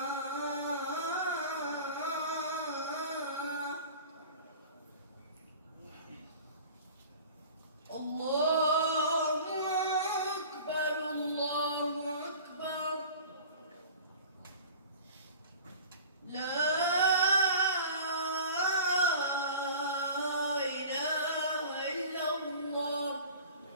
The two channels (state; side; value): inverted; both; correlation -0.41